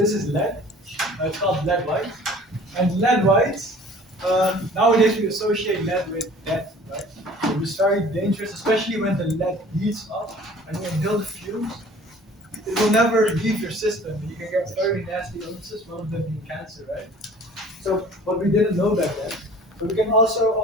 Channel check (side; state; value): both; normal; correlation 0.49